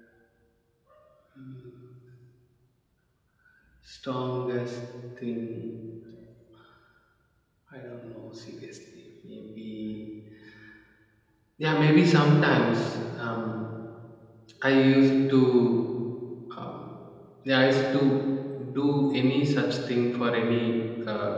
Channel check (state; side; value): identical; both; correlation 1.00